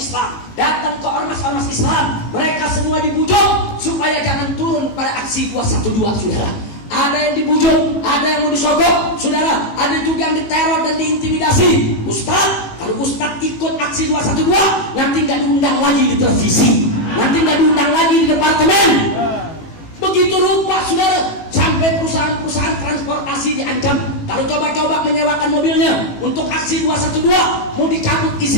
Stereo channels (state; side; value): late; right; 18 ms